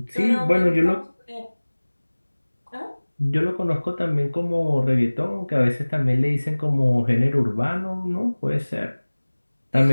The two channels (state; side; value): inverted; both; correlation -1.00